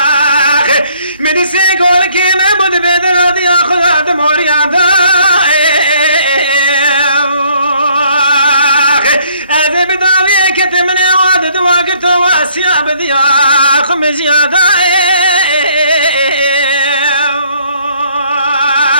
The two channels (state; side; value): inverted; both; correlation -0.64